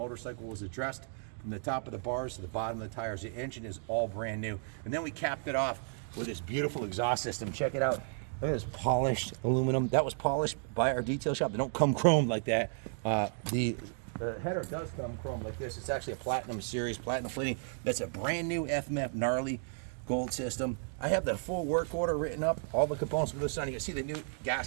was addressed from the top of the bars to the bottom of the tires. The engine is all brand new. And then we capped it off with this beautiful exhaust system. Check it out. Look at this polished aluminum. That was polished by our detail shop. They don't come chromed like that. The header does come chrome like this. It's actually a platinum series, platinum plating. That's a brand new FMF gnarly gold system. I have the full work order written up, all the components for this on. You can see the new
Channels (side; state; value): left; silent; 55 dB below the other